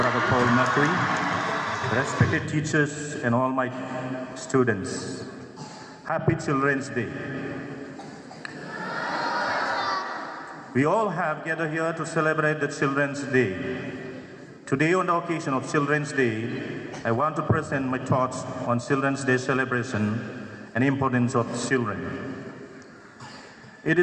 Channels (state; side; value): identical; both; correlation 1.00